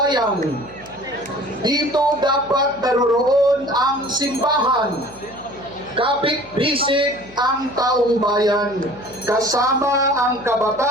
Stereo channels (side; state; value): left; noise; hum, 22 dB below the sound